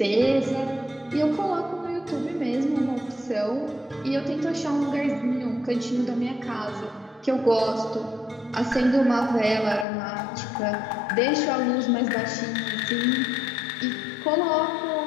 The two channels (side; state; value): right; drops out; at 9.9 s